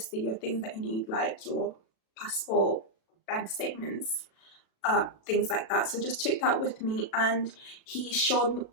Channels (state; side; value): late; right; 36 ms